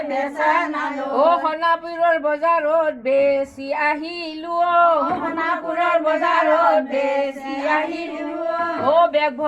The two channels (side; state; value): both; identical; correlation 1.00